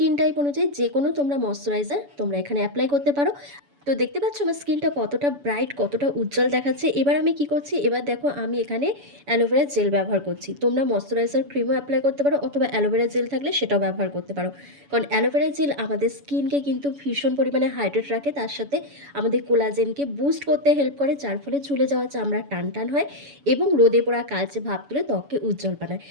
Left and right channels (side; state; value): left; late; 7.0 ms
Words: টাইপ অনুযায়ী যেকোনো তোমরা ময়েশ্চারাইজার তোমরা এখানে এপ্লাই করতে পারো। তো দেখতে পাচ্ছ আমার স্কিনটা কতটা ব্রাইট, কতটা উজ্জ্বল দেখাচ্ছে। এবার আমি কি করছি, এবার দেখো আমি এখানে অ্যালোভেরা জেল ব্যবহার করছি। তোমরা ময়েশ্চারাইজার ক্রিমও এপ্লাই করতে পারো অথবা অ্যালোভেরা জেল থাকলে সেটাও ব্যবহার করতে পারো। কারণ অ্যালোভেরা জেল আমাদের স্কিনকে কিন্তু ভীষণ পরিমাণে হাইড্রেট রাখে। তার সাথে আমাদের কোলাজেনকে বুস্ট করতে হেল্প করে, যার ফলে ঝুলে যাওয়া চামড়া টান হয় এবং রোদে পোড়া কালচে ভাব তুলে ত্বককে উজ্জ্বল বানায়।